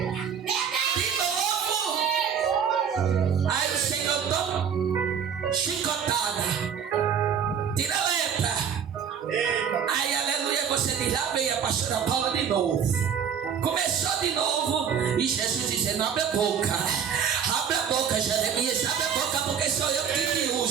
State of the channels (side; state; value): left; quieter; 7.6 dB